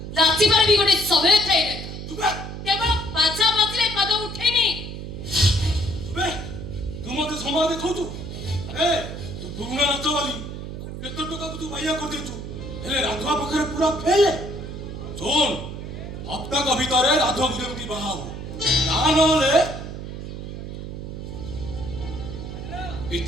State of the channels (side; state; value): right; noise; hum, 8 dB below the sound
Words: ନାଚିବାର ବି ଗୋଟେ ସମୟ ଥାଏ ରେ ତୁବେ କେବଳ ବାଜା ବାଜିଲେ ପାଦ ଉଠେନି ତୁବେ ତୁ ମତେ ସମୟ ଦେଖାଉଛୁ ଏ ତୁ ପୁରୁଣା ନାଚ ବାଲି କେତେ ଟଙ୍କାକୁ ତୁ ବାଇଆ କରିଦେଇଛୁ ହେଲେ ରାଧୁଆ ପାଖରେ ପୁରା ଫେଲେ ଶୁଣ ହପ୍ତାକ ଭିତରେ ରାଧୁଆକୁ ଯେମିତି ବାହା ହବ ତାହା ନହେଲେ